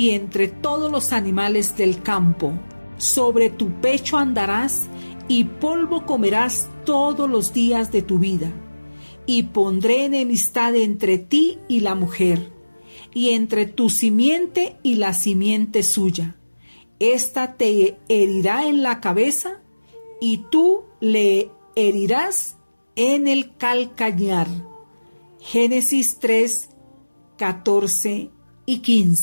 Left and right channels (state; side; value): inverted; both; correlation -1.00